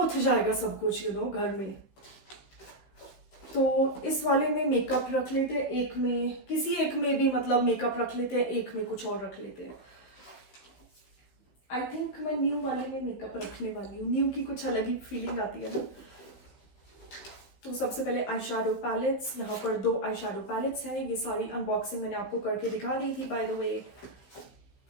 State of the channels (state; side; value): late; right; 15 ms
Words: जाएगा सब कुछ घर में। तो इस वाले में मेकअप रख लेते हैं, एक में किसी एक में भी मतलब मेकअप रख लेते हैं, एक में कुछ और रख लेते हैं। आई थिंक मैं न्यू वाले में मेकअप रखने वाली हूँ, न्यू की कुछ अलग ही फीलिंग आती है ना। तो सबसे पहले आई शैडो पैलेट्स, यहाँ पर 2 आई शैडो पैलेट्स हैं। ये सारी अनबॉक्सिंग मैंने आपको करके दिखा दी थी बाय द वे।